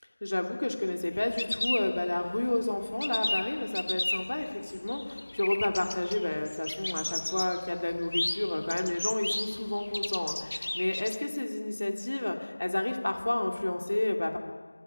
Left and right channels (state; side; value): inverted; both; correlation -1.00